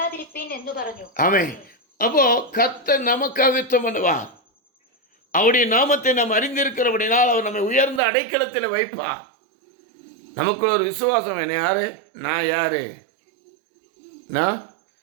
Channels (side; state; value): left; drops out; at 8.0 s